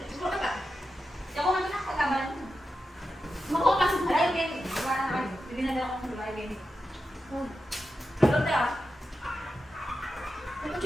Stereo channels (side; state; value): both; normal; correlation 0.90